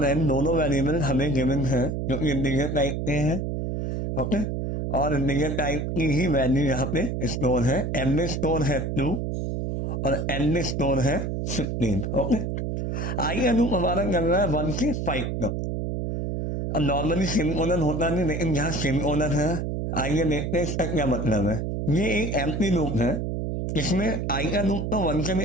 एन दोनों वेरिएबल हमें गिवन है जो कि इंटीजर टाइप के हैं। ओके, और इंटीजर टाइप की ही वैल्यू यहाँ पे स्टोर है। एम में स्टोर है 2 और एन में स्टोर है 15। ओके, आइए अनुप हमारा कर रहा है 1 से 5 तक। अब नॉर्मली सेमीकोलन होता नहीं, लेकिन यहाँ सेमीकोलन है। आइए देखते हैं इसका क्या मतलब है। ये एक एम्प्टी लूप है। इसमें आई का लूप तो 1 से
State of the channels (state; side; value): noise; right; hum, 2 dB below the sound